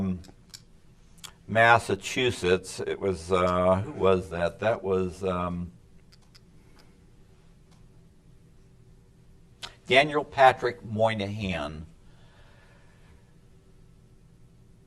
Massachusetts, it was who was that? That was Daniel Patrick Moynihan,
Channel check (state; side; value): identical; both; correlation 1.00